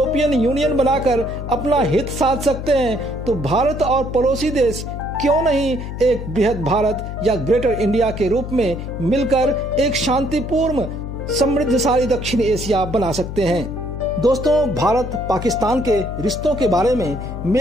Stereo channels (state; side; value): noise; left; hum, 7 dB below the sound